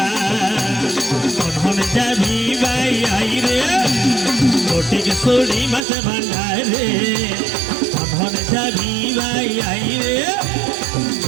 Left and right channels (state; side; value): drops out; left; at 5.8 s